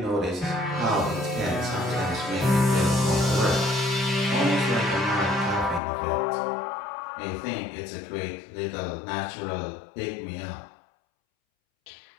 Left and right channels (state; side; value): drops out; right; at 5.8 s